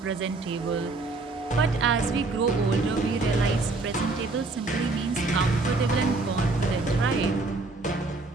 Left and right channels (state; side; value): quieter; left; 3.5 dB